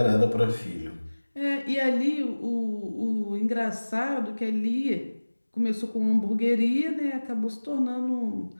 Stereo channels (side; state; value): both; inverted; correlation -1.00